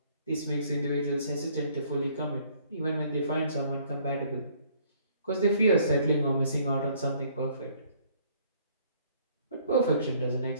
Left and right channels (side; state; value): both; inverted; correlation -0.61